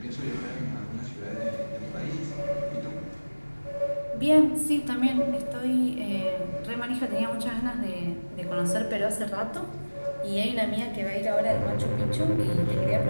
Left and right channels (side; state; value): both; inverted; correlation -1.00